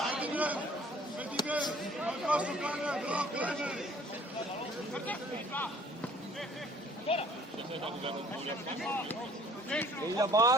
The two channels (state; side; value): normal; both; correlation 0.55